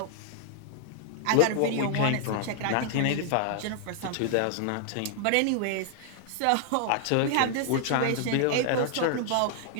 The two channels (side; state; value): both; different; correlation -0.01